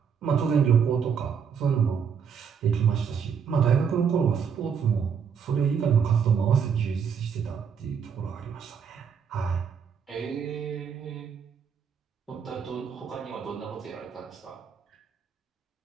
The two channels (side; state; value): left; quieter; 6.9 dB